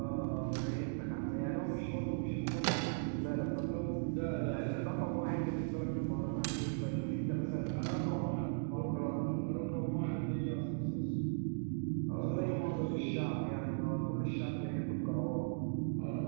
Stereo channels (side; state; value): left; silent; digital silence